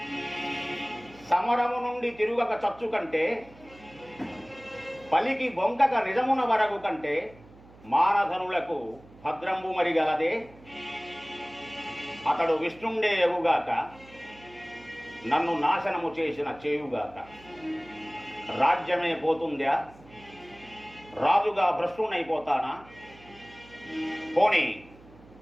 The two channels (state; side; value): noise; right; hum, 23 dB below the sound